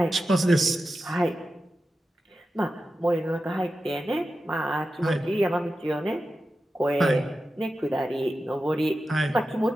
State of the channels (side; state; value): both; normal; correlation 0.92